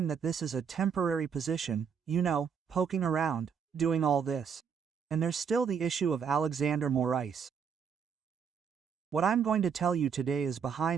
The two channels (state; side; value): quieter; left; 6.8 dB